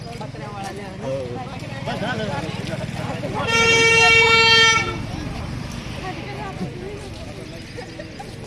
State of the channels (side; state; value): both; identical; correlation 1.00